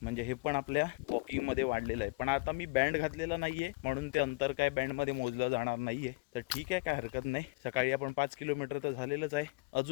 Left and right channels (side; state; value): right; quieter; 27.5 dB